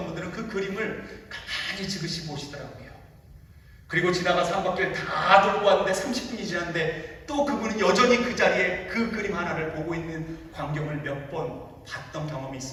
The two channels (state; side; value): identical; both; correlation 1.00